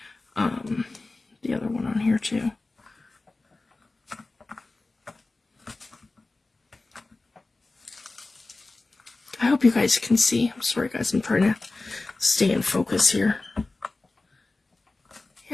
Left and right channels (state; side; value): quieter; right; 3.3 dB